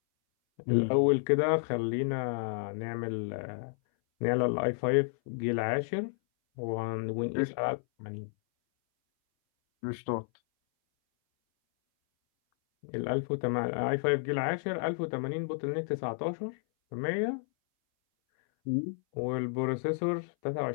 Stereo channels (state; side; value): silent; right; 57 dB below the other